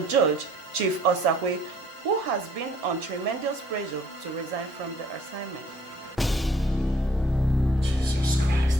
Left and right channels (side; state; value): both; normal; correlation 0.59